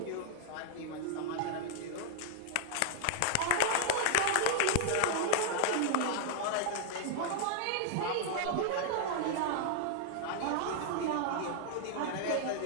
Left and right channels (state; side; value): different; both; correlation -0.01